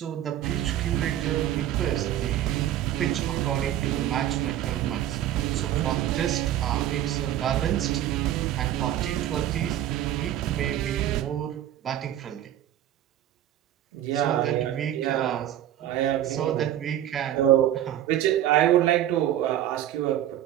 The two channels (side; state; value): left; quieter; 12.0 dB